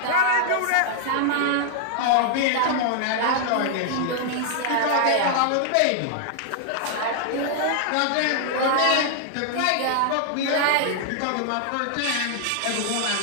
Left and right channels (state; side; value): different; both; correlation -0.01